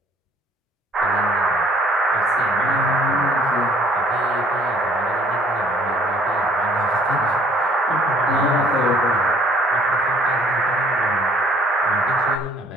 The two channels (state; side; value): normal; both; correlation 0.59